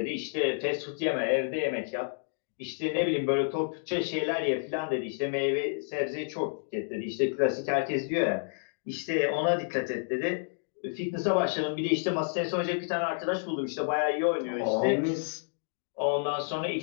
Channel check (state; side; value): silent; right; digital silence